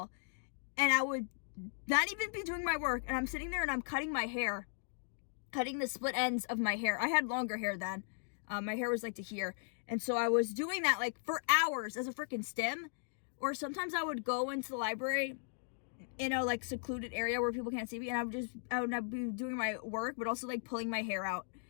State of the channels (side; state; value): right; silent; digital silence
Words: and I would not even be doing my work, and I'm sitting there and I'm cutting my hair, cutting the split ends of my hair. I had longer hair then. My hair was like to here. And so I was doing that like for hours as a freaking stim. Or sometimes I would go into the library in a like secluded area where people can't see me, and I would be doing my work, but also like pulling my hair out,